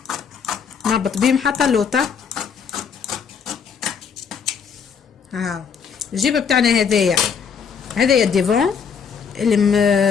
نهبط بيهم حتى اللوطه. الجيبه بتاعنا هذايا الديفون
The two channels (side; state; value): right; quieter; 6.7 dB